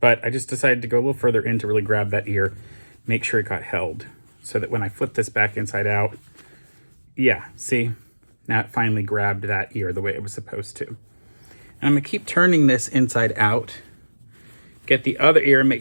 I just decided to go a little further in to really grab that ear, make sure it got held, so that when I flip this back inside out, yeah, see? Now it finally grabbed that ear the way it was supposed to. And I'm going to keep turning this inside out, get the other ear,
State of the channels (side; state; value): both; inverted; correlation -1.00